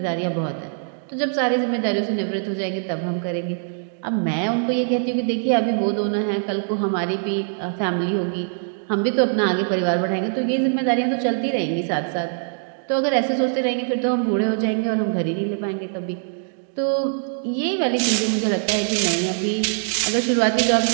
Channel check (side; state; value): left; silent; digital silence